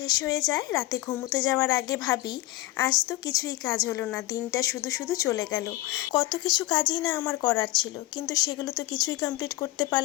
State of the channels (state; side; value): quieter; right; 17.8 dB